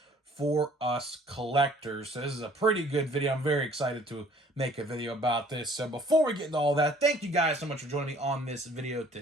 for us collectors. So this is a pretty good video. I'm very excited to make a video about this. So before we get into all that, thank you guys so much for joining me on this video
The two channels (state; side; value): normal; both; correlation 0.56